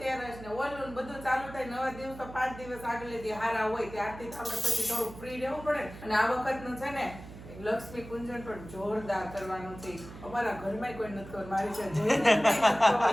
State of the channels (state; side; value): noise; right; hum, 15 dB below the sound